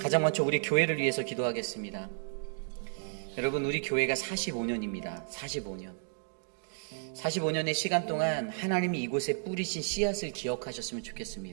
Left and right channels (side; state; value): left; silent; digital silence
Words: 먼저 우리 교회를 위해서 기도하겠습니다. 여러분, 우리 교회가 45년입니다. 45년의 시간 동안 하나님이 이곳에 뿌리신 씨앗을 기억하셨으면